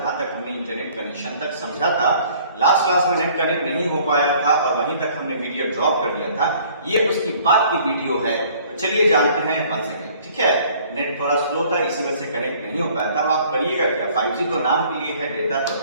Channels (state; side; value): inverted; both; correlation -0.56